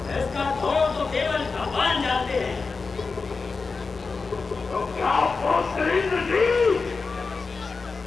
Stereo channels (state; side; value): quieter; right; 4.4 dB